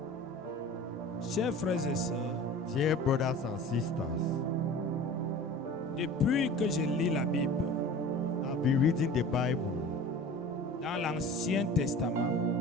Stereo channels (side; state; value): both; normal; correlation 0.39